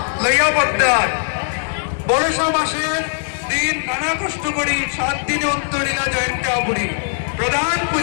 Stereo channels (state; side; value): silent; right; digital silence